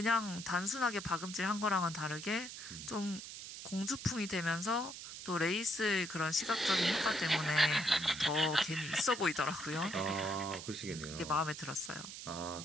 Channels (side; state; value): right; noise; hiss, 10 dB below the sound